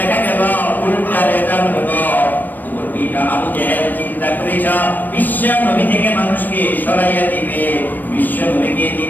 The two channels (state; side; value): late; right; 0.089 ms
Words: গেল উল্টা রেজাল্ট হলো। আবু জেহেল চিন্তা করেছ বিশ্ব নবী থেকে মানুষকে সরাইয়া দিবে, বিশ্ব নবীকে